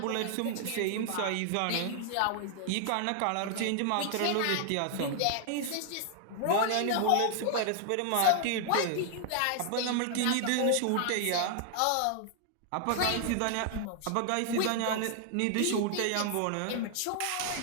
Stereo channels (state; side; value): different; both; correlation 0.00